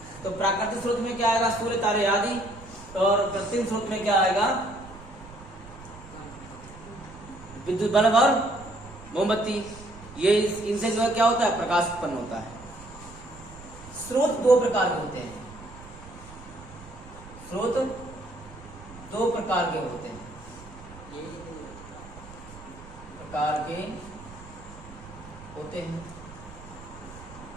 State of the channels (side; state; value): right; noise; rumble, 17 dB below the sound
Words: तो प्राकृतिक स्रोत में क्या आएगा? सूर्य, तारे आदि। और कृत्रिम स्रोत में क्या आएगा? विद्युत बल्ब और मोमबत्ती। ये इनसे जो है क्या होता है? प्रकाश उत्पन्न होता है। स्रोत दो प्रकार के होते हैं, स्रोत दो प्रकार के होते हैं,